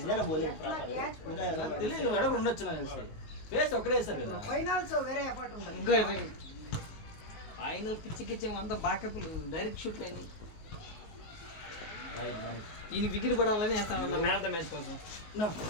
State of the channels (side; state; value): right; late; 19 ms